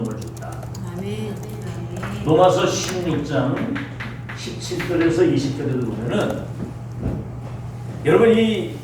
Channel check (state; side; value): identical; both; correlation 1.00